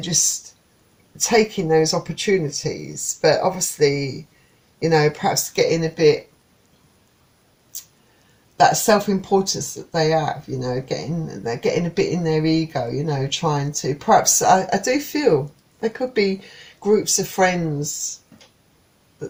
taking those opportunities, but obviously, you know, perhaps getting a bit, that self-importance that they have, you know, they're getting a bit in their ego, you know, trying to, perhaps, I do feel there could be groups of friends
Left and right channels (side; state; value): both; identical; correlation 1.00